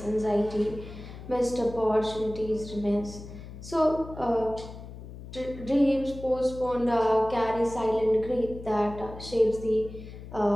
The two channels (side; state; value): left; noise; hum, 13 dB below the sound